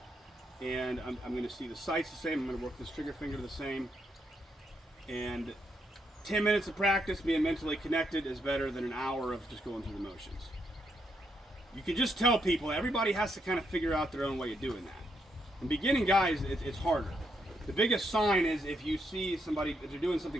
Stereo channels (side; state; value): both; normal; correlation 0.78